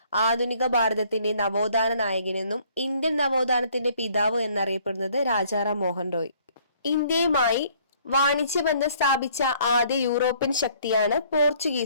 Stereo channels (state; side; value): inverted; both; correlation -0.60